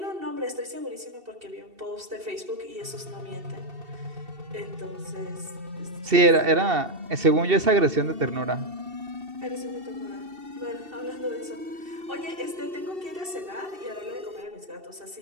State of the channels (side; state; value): left; late; 2.7 ms